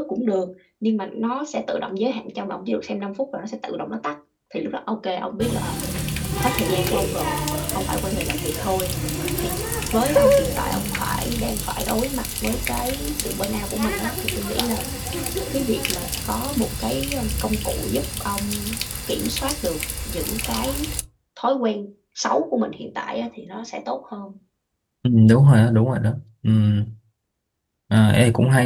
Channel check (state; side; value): identical; both; correlation 1.00